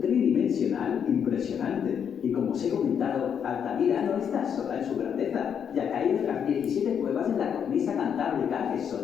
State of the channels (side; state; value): right; quieter; 7.9 dB